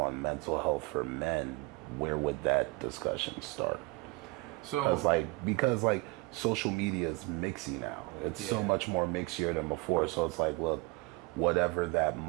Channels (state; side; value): quieter; left; 24.5 dB